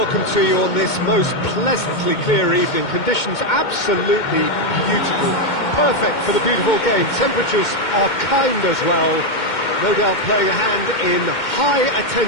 to you on this most pleasantly clear evening. Conditions absolutely beautiful, perfect for the beautiful game. Temperatures are kind as well, no doubt playing a hand in high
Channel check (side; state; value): right; late; 2.2 ms